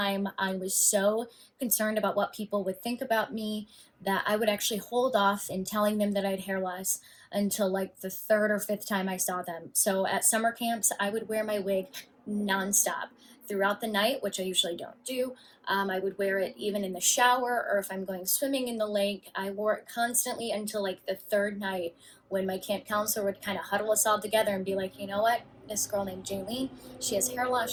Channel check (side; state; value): both; identical; correlation 1.00